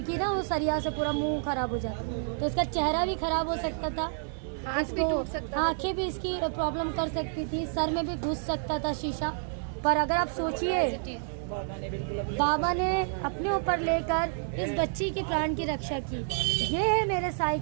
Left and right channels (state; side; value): silent; left; 58 dB below the other